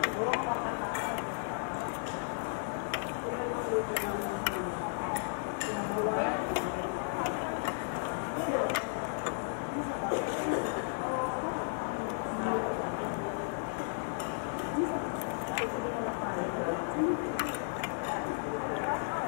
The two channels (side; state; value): right; silent; digital silence